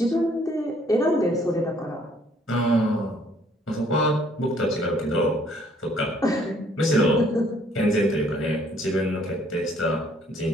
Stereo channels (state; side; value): normal; both; correlation 0.62